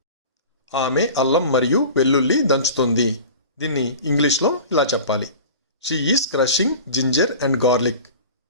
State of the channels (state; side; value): inverted; both; correlation -0.37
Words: ఆమె అల్లం మరియు వెల్లుల్లి దంచుతుంది. దీన్ని ఇంగ్లీష్లో ఇలా చెప్పాలి. She is crushing ginger and garlic.